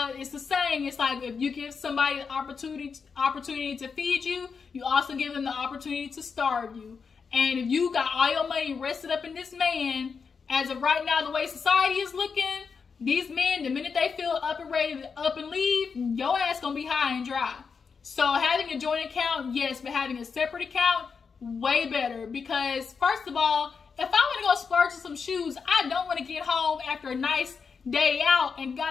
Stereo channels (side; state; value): right; quieter; 5.6 dB